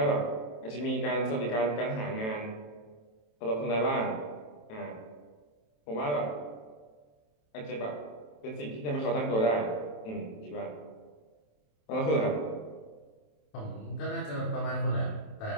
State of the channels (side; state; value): right; late; 27 ms